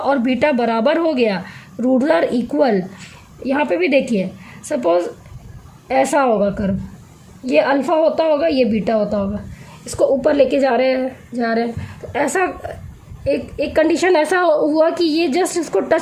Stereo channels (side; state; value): both; identical; correlation 1.00